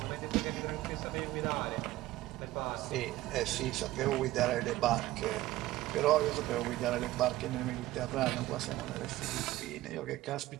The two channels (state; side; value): quieter; left; 16.6 dB